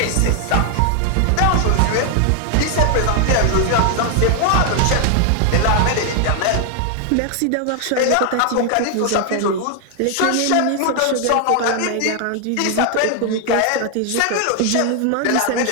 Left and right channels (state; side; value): different; both; correlation 0.00